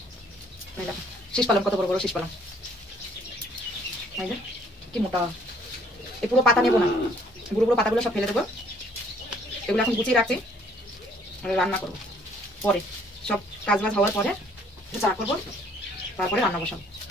দেখো শীষ পালং, কত বড় বড় শীষ পালং, কি মোটা। এই পুরো পাতা নেবো না, পুরো পুরো পাতাগুলো সব ফেলে দেবো। এগুলো এখন গুছিয়ে রাখছি, রান্না করবো পরে, সব কাজ বাজ হওয়ার পরে চা করবো, তারপরে রান্না বসাবো।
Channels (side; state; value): both; normal; correlation 0.60